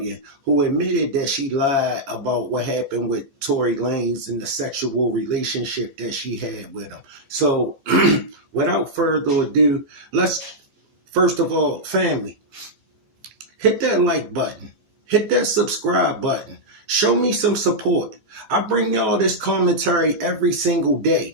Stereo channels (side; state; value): left; late; 15 ms